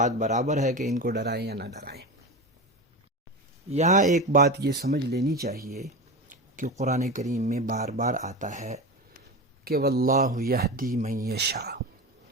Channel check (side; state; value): both; normal; correlation 0.24